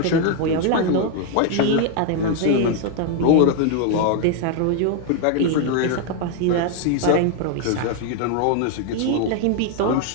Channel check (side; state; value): both; different; correlation 0.00